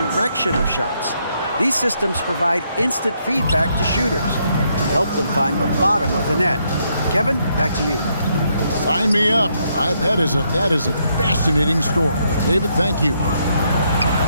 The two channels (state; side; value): inverted; both; correlation -0.75